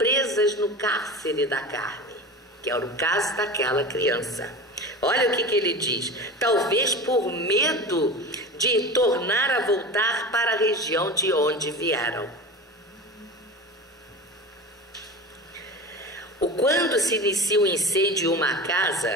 no cárcere da carne, que é o caso daquela criança. Olha o que ele diz. Talvez por medo de tornar a voltar para a região de onde vieram. Quando se inicia um incêndio em uma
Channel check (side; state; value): both; normal; correlation 0.30